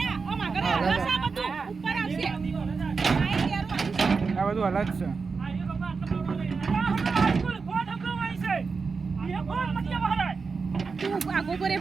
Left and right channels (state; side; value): quieter; left; 4.8 dB